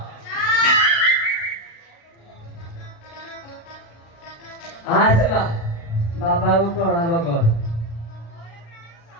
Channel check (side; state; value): right; late; 35 ms